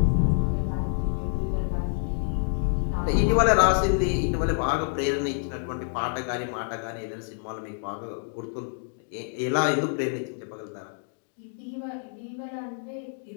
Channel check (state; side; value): silent; right; 60 dB below the other